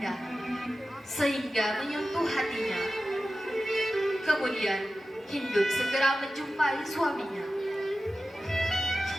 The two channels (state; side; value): normal; both; correlation 0.94